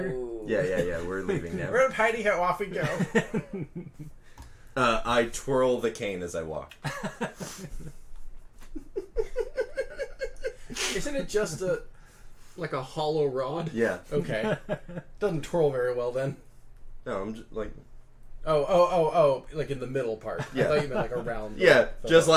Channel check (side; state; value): both; identical; correlation 1.00